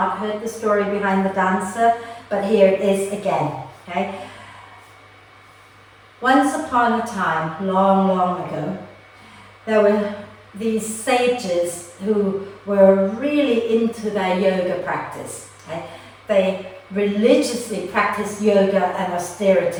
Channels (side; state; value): both; identical; correlation 1.00